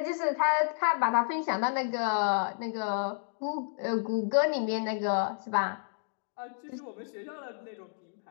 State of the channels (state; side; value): silent; right; digital silence